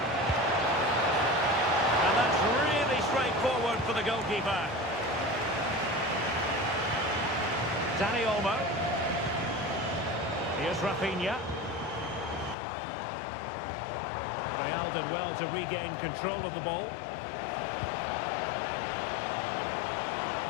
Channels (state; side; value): drops out; right; at 12.6 s